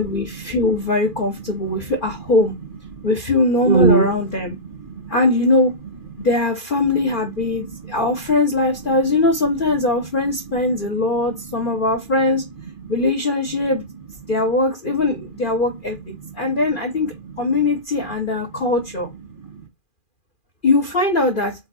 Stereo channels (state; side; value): late; right; 2.4 ms